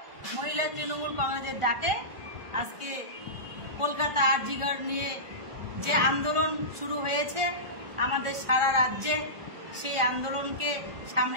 মহিলা তৃণমূল কংগ্রেসের ডাকে আজকে কলকাতা আরজিকর নিয়ে যে আন্দোলন শুরু হয়েছে আমাদের সারা রাজ্যে, সেই আন্দোলনকে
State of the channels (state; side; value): late; left; 1.4 ms